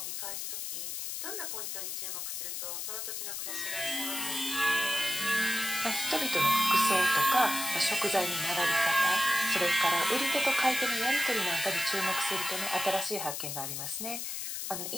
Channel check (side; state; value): left; noise; hiss, 4 dB below the sound